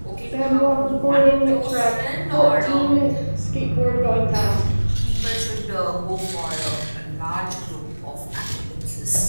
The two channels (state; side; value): inverted; both; correlation -1.00